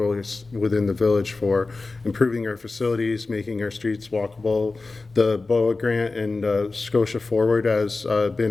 within the village for improving our facilities, making our streets walkable. The BOA grant and Scotia Forward has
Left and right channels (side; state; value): right; quieter; 3.6 dB